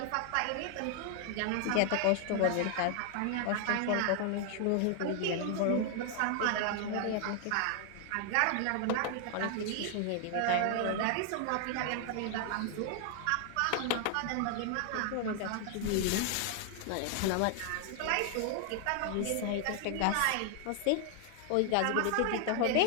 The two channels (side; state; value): both; different; correlation 0.00